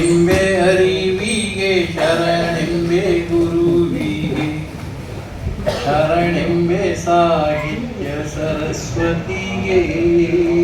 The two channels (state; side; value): identical; both; correlation 1.00